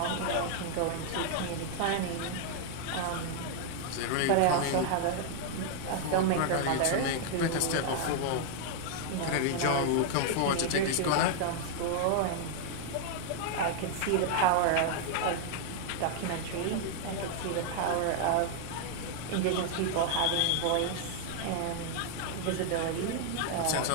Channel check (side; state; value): both; different; correlation 0.00